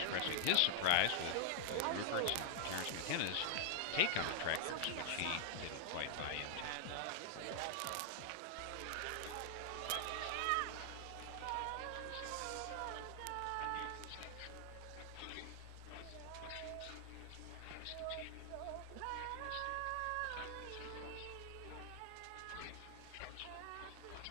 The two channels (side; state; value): both; different; correlation -0.01